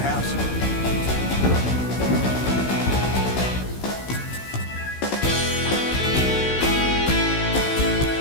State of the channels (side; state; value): right; late; 16 ms